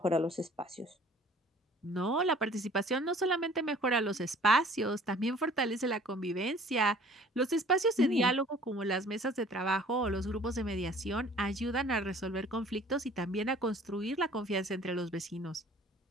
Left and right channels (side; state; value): both; normal; correlation 0.52